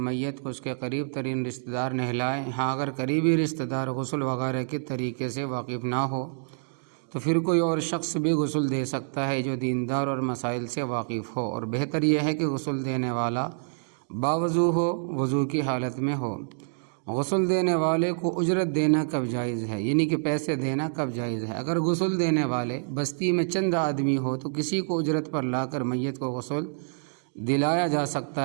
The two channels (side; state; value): left; silent; digital silence